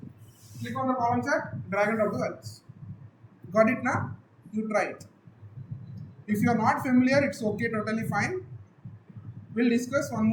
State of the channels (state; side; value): identical; both; correlation 1.00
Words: click on the column chart, drag and drop the values. Got it now? You try it. If you are not familiar, it's okay, totally fine. We'll discuss one